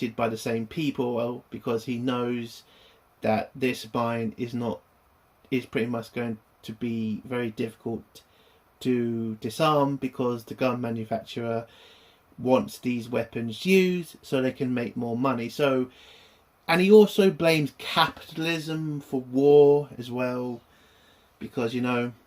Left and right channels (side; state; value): both; identical; correlation 1.00